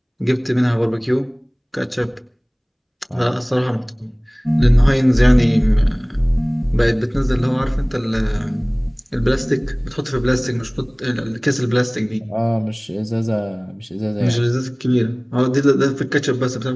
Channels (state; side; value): identical; both; correlation 1.00